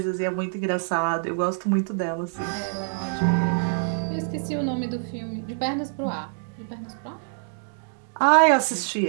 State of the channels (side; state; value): left; silent; digital silence